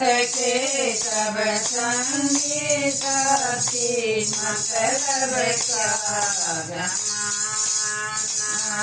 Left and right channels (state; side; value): identical; both; correlation 1.00